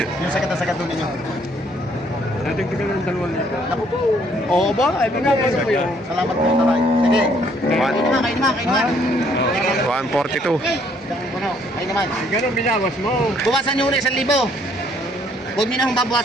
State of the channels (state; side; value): normal; both; correlation 0.65